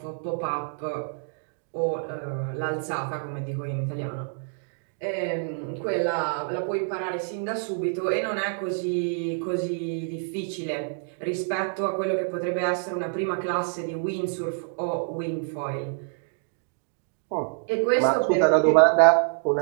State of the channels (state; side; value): silent; left; 60 dB below the other